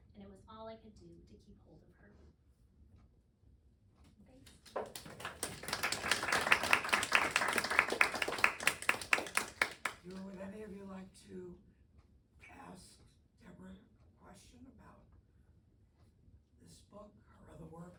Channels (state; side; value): identical; both; correlation 1.00